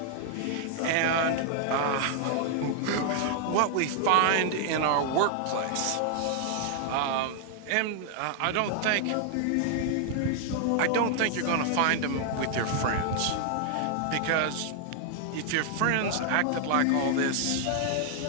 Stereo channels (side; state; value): both; different; correlation 0.00